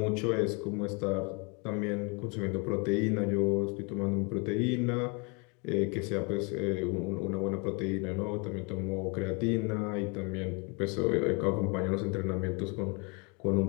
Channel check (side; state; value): right; quieter; 31.9 dB